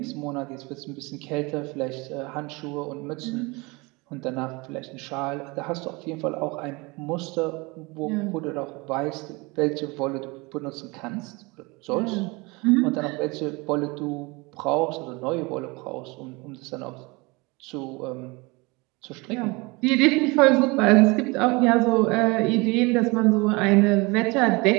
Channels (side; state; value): left; quieter; 25.8 dB